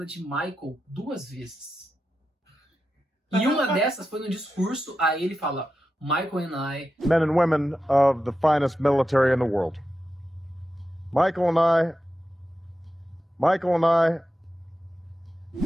de Michael 2 vezes. E uma dessas foi no discurso, aí ele fala, Michael and I... Men and women of the finest military in the world. Michael and I...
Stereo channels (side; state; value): both; normal; correlation 0.90